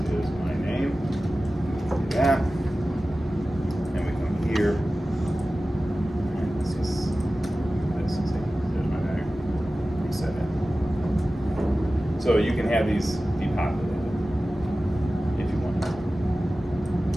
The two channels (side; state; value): both; normal; correlation 0.96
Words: my name, do that, and we come here, and this is there's my bag, reset it. So you can have these depopulated if you want.